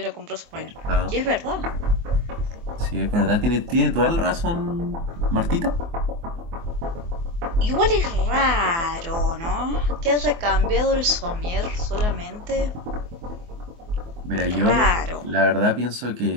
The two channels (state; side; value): late; left; 24 ms